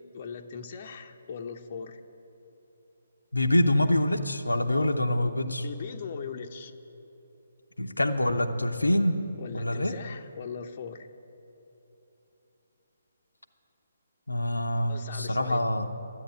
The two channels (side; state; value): both; inverted; correlation -0.91